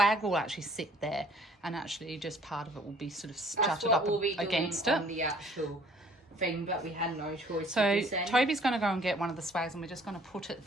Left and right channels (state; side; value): normal; both; correlation 0.57